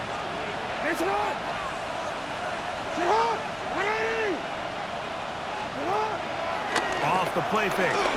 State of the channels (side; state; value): both; identical; correlation 1.00